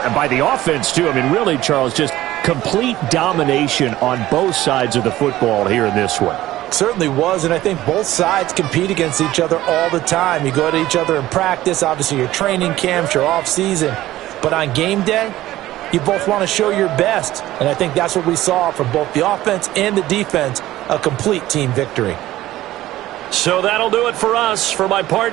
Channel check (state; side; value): quieter; left; 15.4 dB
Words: by the offense, too. I mean, really, Charles, just complete domination on both sides of the football here in this one. Certainly was, and I think both sides compete against each other all the time. You go at each other in practice, obviously your training camps, your off-season. But on game day, you both want to show your best, and I think that's what we saw from both the offense and the defense, a complete team victory. So that'll do it for us. For my